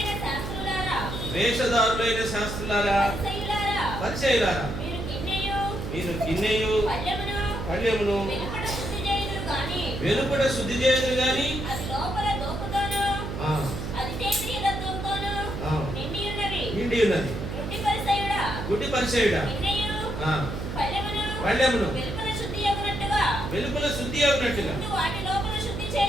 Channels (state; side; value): noise; right; hum, 5 dB below the sound